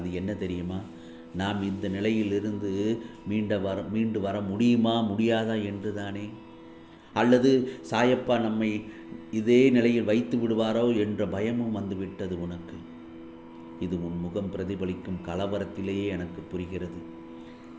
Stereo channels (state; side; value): identical; both; correlation 1.00